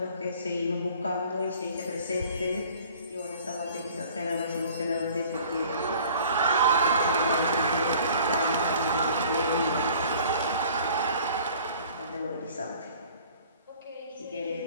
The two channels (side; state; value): both; inverted; correlation -0.50